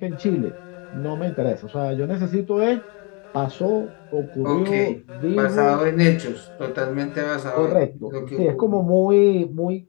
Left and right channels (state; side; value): quieter; right; 32.7 dB